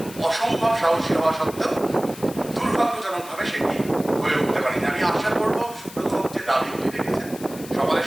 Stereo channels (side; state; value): left; noise; hiss, 16 dB below the sound